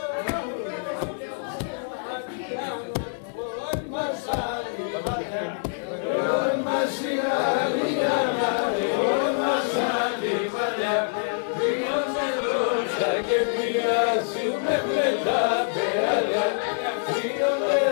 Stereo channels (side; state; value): right; silent; 61 dB below the other